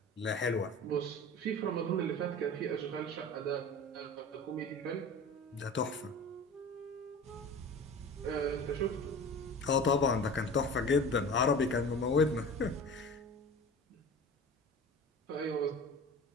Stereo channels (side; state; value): both; normal; correlation 0.37